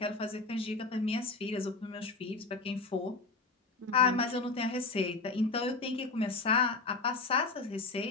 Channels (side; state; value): right; quieter; 3.8 dB